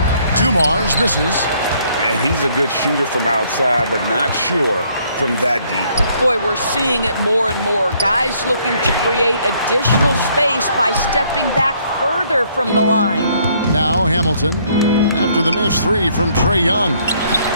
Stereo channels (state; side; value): inverted; both; correlation -0.66